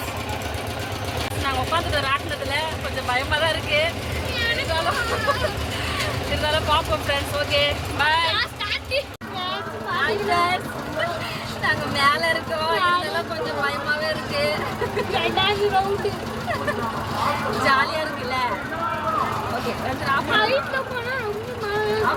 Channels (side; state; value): both; identical; correlation 1.00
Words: நாங்கள் உட்காந்துட்டு ராட்டினத்தில் கொஞ்சம் பயமாக தான் இருக்குது. இருந்தாலும் பார்ப்போம் ஃப்ரெண்ட்ஸ். Okay bye. நாங்கள் மேலே இருக்கோம். இதெல்லாம் கொஞ்சம் பயமாகவே இருக்கு. ஜாலியாக இருக்குல்ல? ஓகே ஆஃப்